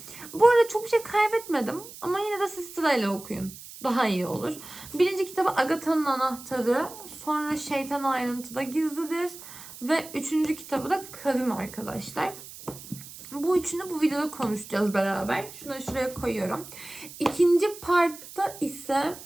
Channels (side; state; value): right; noise; hiss, 15 dB below the sound